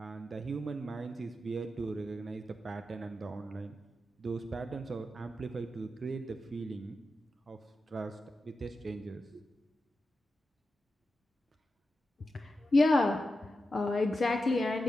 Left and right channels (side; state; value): both; normal; correlation 0.90